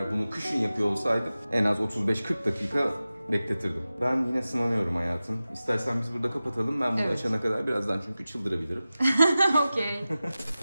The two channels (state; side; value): inverted; both; correlation -0.95